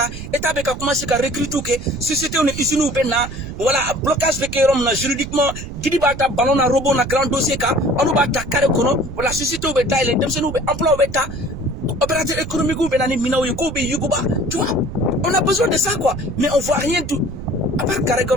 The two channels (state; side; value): noise; right; rumble, 9 dB below the sound